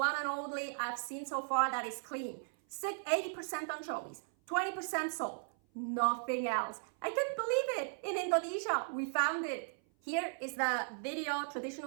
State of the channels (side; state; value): left; silent; 53 dB below the other